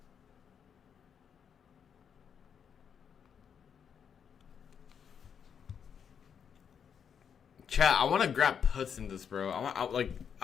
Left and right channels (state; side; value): quieter; right; 7.5 dB